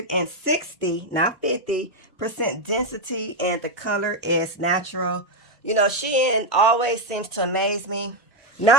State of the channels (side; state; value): both; normal; correlation 0.03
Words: not 50% density, and the color is natural. You know, Shein always seems to amaze me.